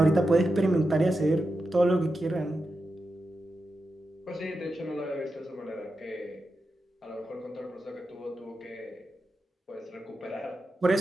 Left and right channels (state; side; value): normal; both; correlation 0.89